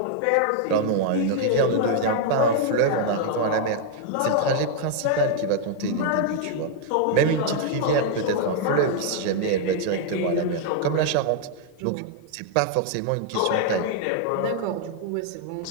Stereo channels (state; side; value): different; both; correlation 0.00